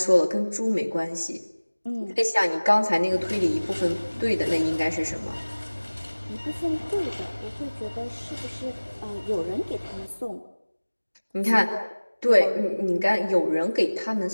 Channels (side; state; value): both; inverted; correlation -1.00